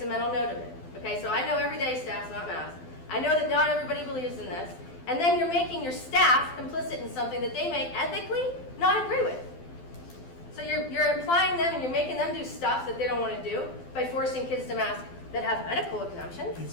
a mental note of it. Okay, so I know every day staff's not masked. I know that not everybody believes in this. And then you're making your staff complicit in something that they may ethically not agree with. So you're implying them and you're making them do stuff that they don't want to do by forcing kids to mask that have medical exemptions.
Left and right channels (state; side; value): late; right; 12 ms